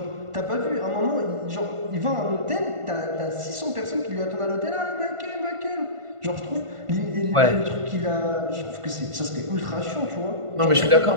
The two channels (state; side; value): late; left; 1.5 ms